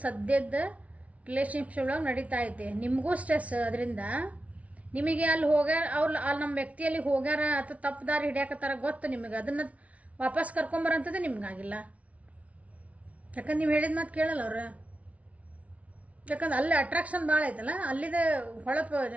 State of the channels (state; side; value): late; left; 0.066 ms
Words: ಸದ್ಯದ ರಿಲೇಷನ್ಶಿಪ್ ಒಳಗೆ ನಡೀತಾ ಐತೆ. ನಿಮಗೂ ಸ್ಟ್ರೆಸ್ ಅದರಿಂದ. ನಿಮಗೆ ಅಲ್ಲಿ ಅಲ್ಲಿ ನಮ್ಮ ವ್ಯಕ್ತಿಯಲ್ಲಿ ಹೋಗ್ಯಾರ ಅಥವಾ ತಪ್ಪು ದಾರಿ ಹಿಡಿಯಾಕತ್ತಾರ ಗೊತ್ತು ನಿಮಗೆ, ಅದನ್ನು ವಾಪಸ್ ಕರ್ಕೊಂಬರಂಥದ್ದು ನಿಮ್ಗಾಗಿಲ್ಲ. ಯಾಕಂದ್ರೆ ನೀವು ಹೇಳಿದ ಮಾತು ಕೇಳಲ್ಲ ಅವ್ರು. ಯಾಕಂದ್ರೆ ಅಲ್ಲಿ ಅಟ್ರಾಕ್ಷನ್ ಭಾಳ ಐತಲ್ಲ, ಅಲ್ಲಿದೆ ಹೊಳಪು